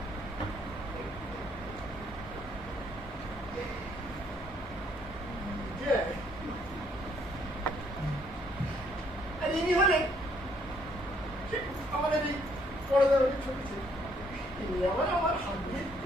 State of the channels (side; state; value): both; normal; correlation 0.67